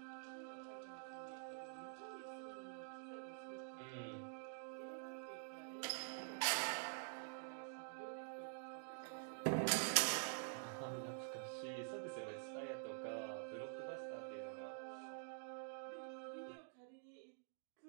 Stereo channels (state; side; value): silent; left; digital silence